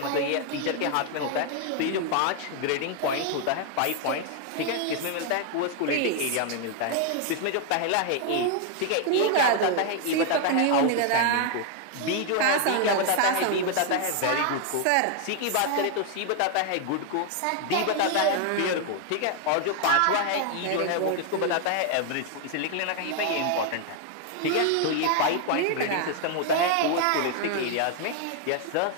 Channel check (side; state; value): both; different; correlation 0.00